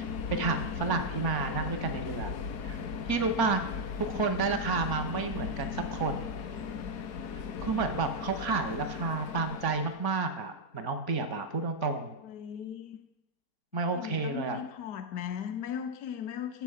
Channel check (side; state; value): right; late; 4.8 ms